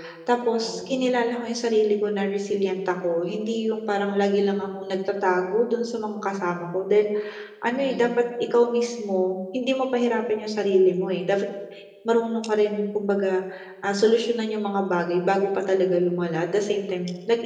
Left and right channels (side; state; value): both; identical; correlation 1.00